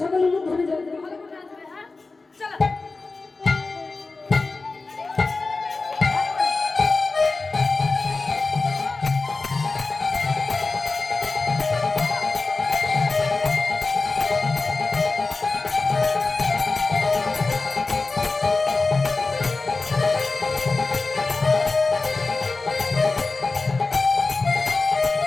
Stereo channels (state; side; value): quieter; right; 3.7 dB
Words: সকলে উলুধ্বনি যাবে